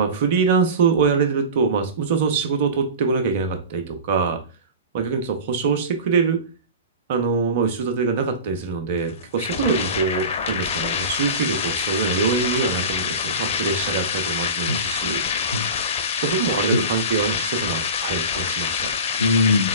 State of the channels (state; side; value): inverted; both; correlation -0.31